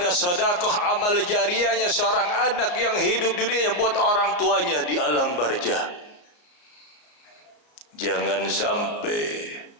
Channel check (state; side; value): late; right; 33 ms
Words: sedekah amal jariahnya seorang anak yang hidup di dunia buat orang tuanya di alam barzah. Jangan sampai